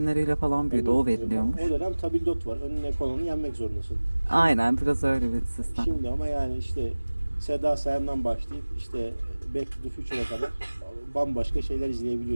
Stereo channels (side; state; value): both; inverted; correlation -1.00